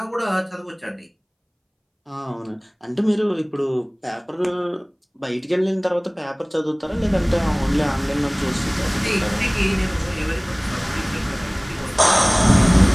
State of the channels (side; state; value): both; identical; correlation 1.00